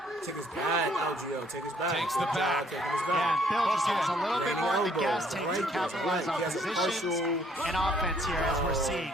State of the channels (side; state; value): both; normal; correlation 0.64